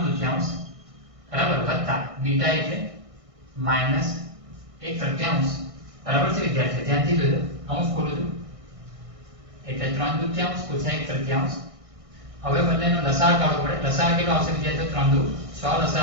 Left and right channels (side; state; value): left; late; 1.6 ms